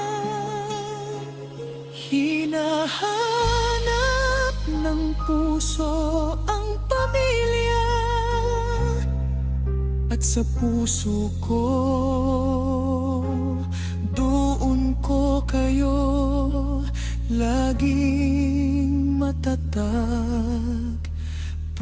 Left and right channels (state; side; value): identical; both; correlation 1.00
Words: Hinahanap ng puso ang pamilya at sa puso ko doon ko kayo laging matatag